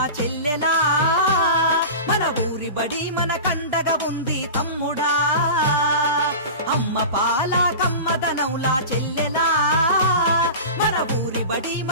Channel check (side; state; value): both; inverted; correlation -0.30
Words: చెల్లెలా, మన ఊరి బడి మన కండగా ఉంది తమ్ముడా. అమ్మ పాల కమ్మదనంలా చెల్లెలా, మన ఊరి బడి